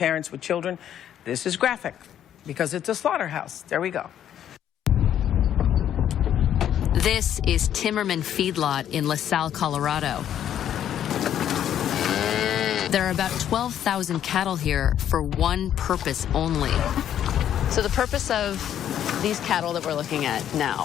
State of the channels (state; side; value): quieter; right; 10.2 dB